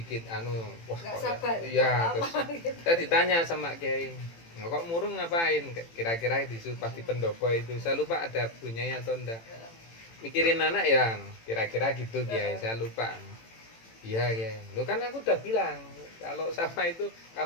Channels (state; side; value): late; right; 18 ms